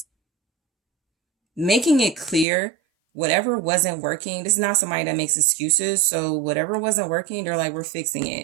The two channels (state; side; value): drops out; left; at 2.5 s